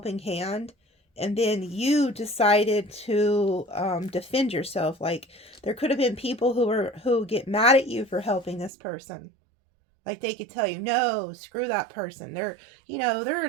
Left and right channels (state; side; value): drops out; left; at 8.7 s